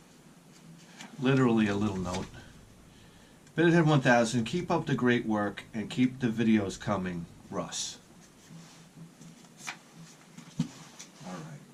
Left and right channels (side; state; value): both; identical; correlation 1.00